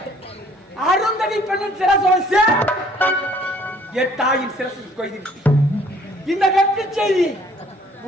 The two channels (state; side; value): normal; both; correlation 0.58